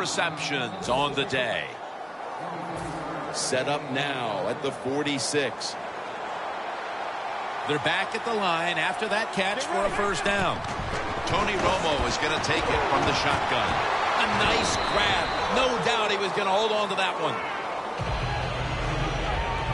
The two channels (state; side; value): identical; both; correlation 1.00